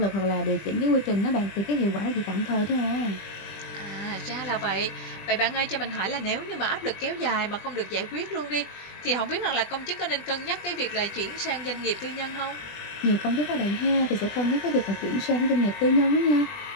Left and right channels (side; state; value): right; late; 20 ms